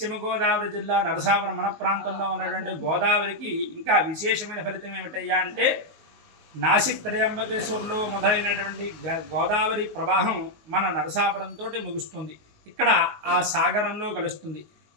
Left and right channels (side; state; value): left; late; 19 ms